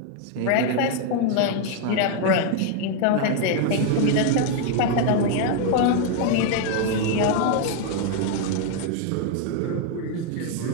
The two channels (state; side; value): different; both; correlation 0.01